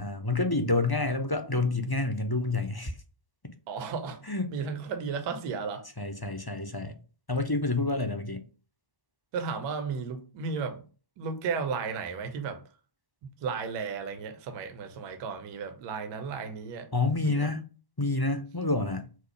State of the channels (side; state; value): right; late; 1.1 ms